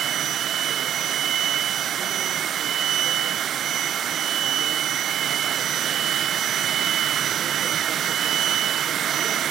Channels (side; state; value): left; quieter; 9.9 dB